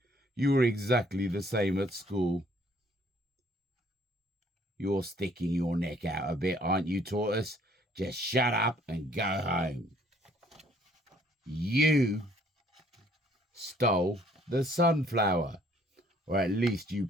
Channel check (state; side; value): normal; both; correlation 0.62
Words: You were exactly the same at school. You're sticking your neck out a bit, aren't you, Tortoise? Just shut up and go home. You stole the sunflower, or at least you